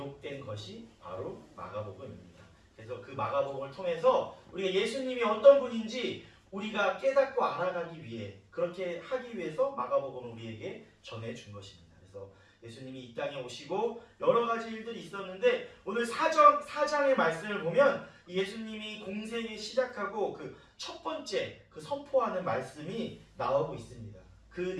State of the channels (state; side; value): identical; both; correlation 1.00